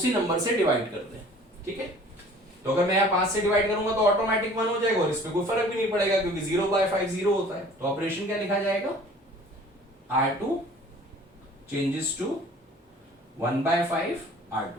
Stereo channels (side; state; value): both; normal; correlation 0.49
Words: नंबर से डिवाइड कर दें, ठीक है। तो अगर मैं यहाँ 5 से डिवाइड करूंगा तो ऑटोमेटिक 1 हो जाएगा और इसमें कोई फर्क भी नहीं पड़ेगा, क्योंकि 0/5 0 होता है। तो ऑपरेशन क्या लिखा जाएगा, R2 चेंजेस टू 1/5